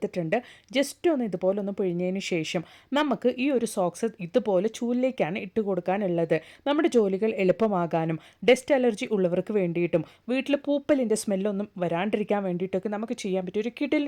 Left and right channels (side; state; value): both; identical; correlation 1.00